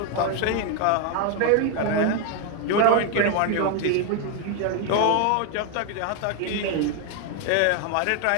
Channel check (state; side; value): different; both; correlation 0.01